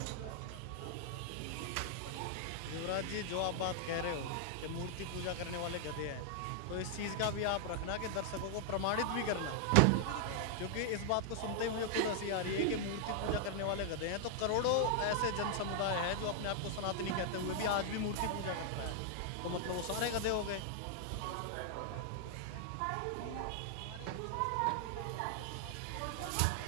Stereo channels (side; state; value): both; different; correlation -0.01